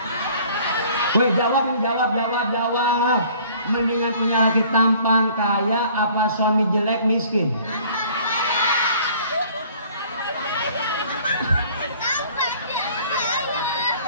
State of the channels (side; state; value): both; inverted; correlation -0.53